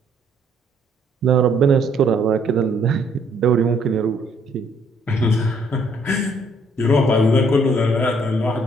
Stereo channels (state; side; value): normal; both; correlation 0.66